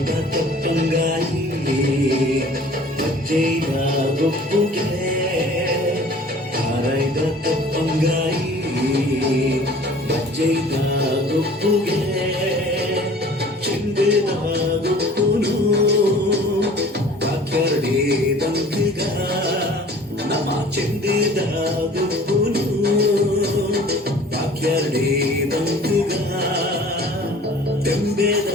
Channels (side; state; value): both; normal; correlation 0.48